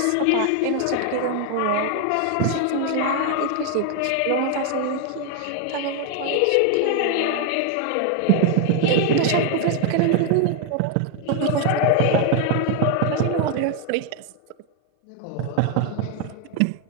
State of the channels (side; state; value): both; different; correlation 0.01